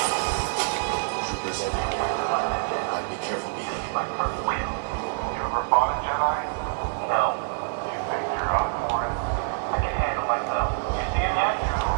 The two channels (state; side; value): silent; left; 61 dB below the other